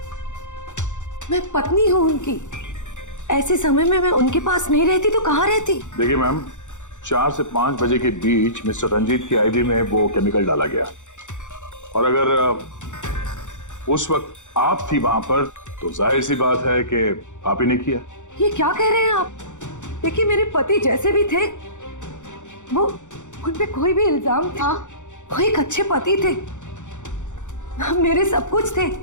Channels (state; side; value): late; right; 0.85 ms